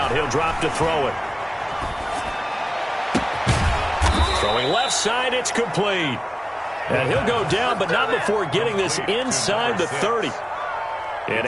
he'll drop to throw it. Throwing throwing left side. It's complete. And he'll go down, but not before getting this inside the 30. An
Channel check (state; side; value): identical; both; correlation 1.00